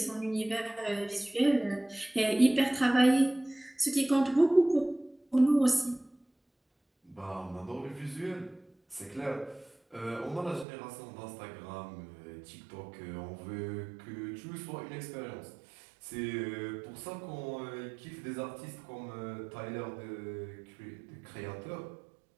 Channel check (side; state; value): left; drops out; at 10.7 s